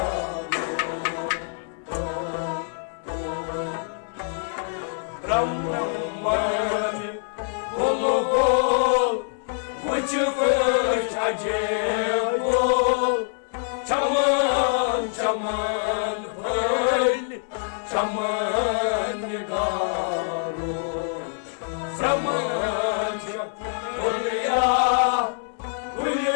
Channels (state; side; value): silent; right; digital silence